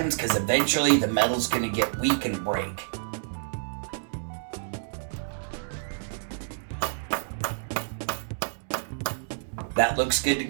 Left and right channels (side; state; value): left; silent; digital silence